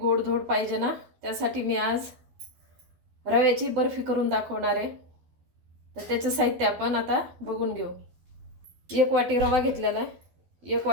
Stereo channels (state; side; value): late; left; 12 ms